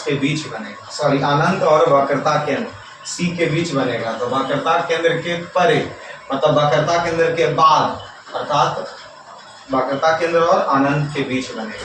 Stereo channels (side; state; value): both; identical; correlation 1.00